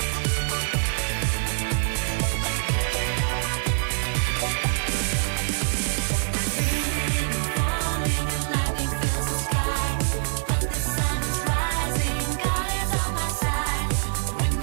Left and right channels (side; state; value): left; silent; digital silence